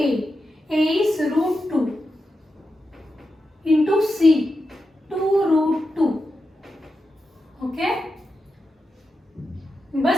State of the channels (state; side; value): normal; both; correlation 0.89